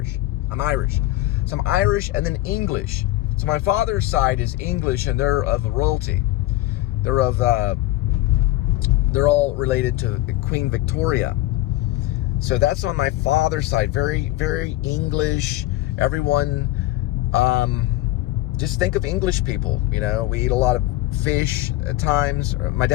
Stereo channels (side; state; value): right; quieter; 16.3 dB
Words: I'm Irish. So I'm Irish and then English. So my father's side is English, and they're of royalty. They're all related to Queen Victoria. So that's on my father's side. Very, very English. Everyone, just think of English people. You know, we eat a lot of fish at times. My